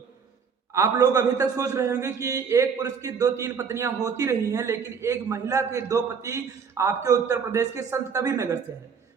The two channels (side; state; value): left; quieter; 6.2 dB